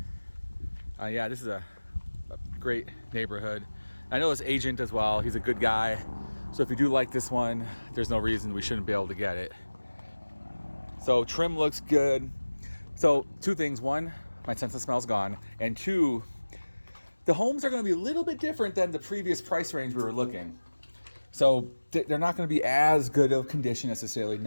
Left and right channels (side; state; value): both; inverted; correlation -1.00